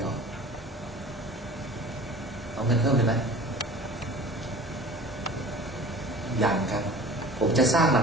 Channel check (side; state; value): both; normal; correlation 0.42